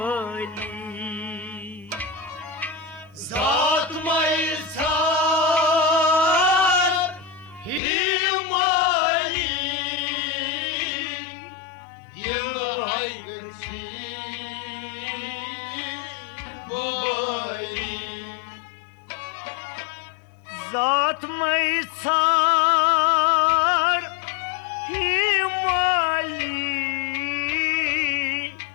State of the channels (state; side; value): drops out; right; at 7.8 s